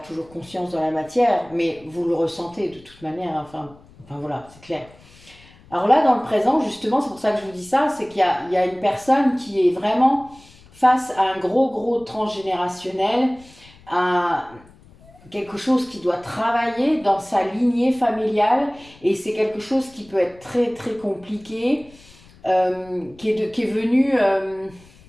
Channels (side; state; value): left; noise; rumble, 25 dB below the sound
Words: conscience dans la matière, mais vous le ressentez de toute manière, enfin voilà, c'est clair. Alors là, dans le présent, justement, c'est pour ça que je vous dis ça, c'est qu'il y a une personne qui est vraiment face à un gros transgénérationnel, à quelque chose qui doit travailler dans sa lignée familiale, et c'est quelque chose qui peut être très très compliqué, qui est venu,